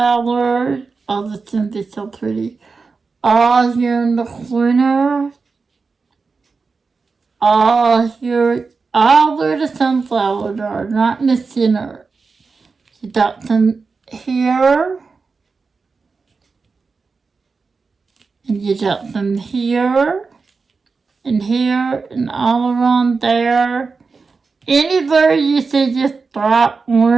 Oh, the sun is so pretty. All here in the corner. All here. All where the sunflowers are, not in the center. You got some here. And you got some here. And here and all around there. Anywhere you see just bright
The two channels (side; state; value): left; quieter; 4.5 dB